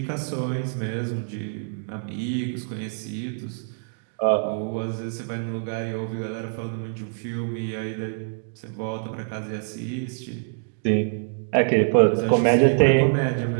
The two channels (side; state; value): left; silent; digital silence